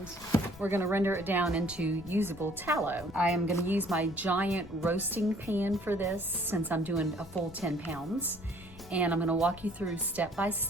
we're going to render it down into usable tallow. I am going to use my giant roasting pan for this since I'm doing a full 10 pounds. And I'm going to walk you through step by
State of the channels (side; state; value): left; noise; rumble, 19 dB below the sound